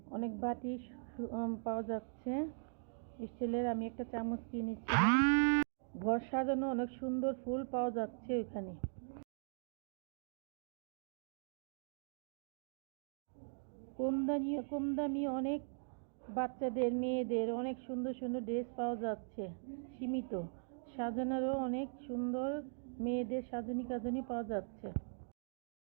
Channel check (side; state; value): left; silent; digital silence